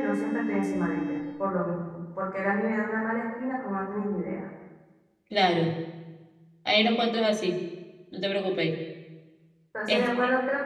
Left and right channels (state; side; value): identical; both; correlation 1.00